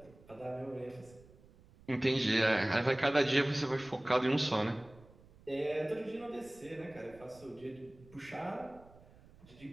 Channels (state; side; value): noise; right; rumble, 24 dB below the sound